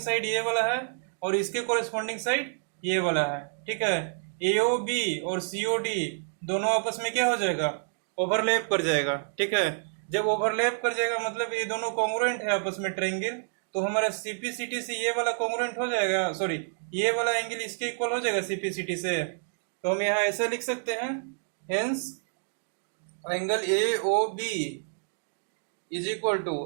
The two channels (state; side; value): silent; left; digital silence